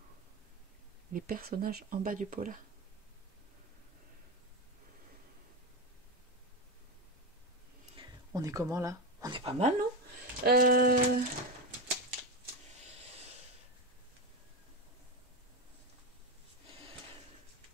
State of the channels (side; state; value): both; normal; correlation 0.14